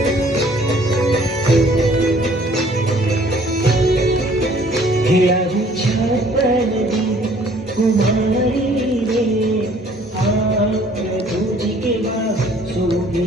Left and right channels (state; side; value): normal; both; correlation 0.57